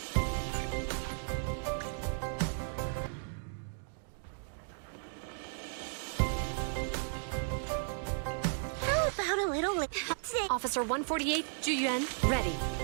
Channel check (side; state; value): left; silent; digital silence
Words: How about a little Officer 148, Juyuan, ready.